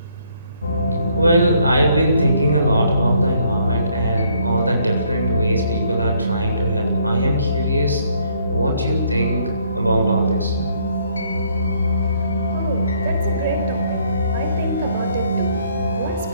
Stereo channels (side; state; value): both; inverted; correlation -0.67